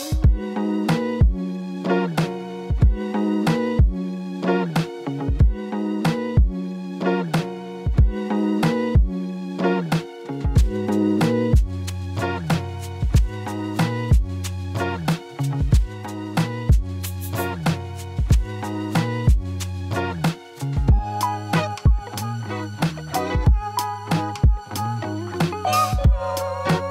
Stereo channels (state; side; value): identical; both; correlation 1.00